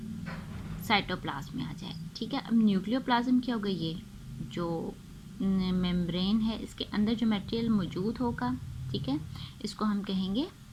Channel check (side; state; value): both; identical; correlation 1.00